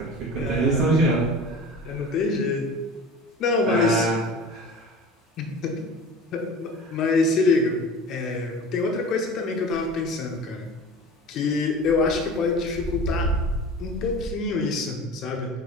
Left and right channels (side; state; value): both; normal; correlation 0.37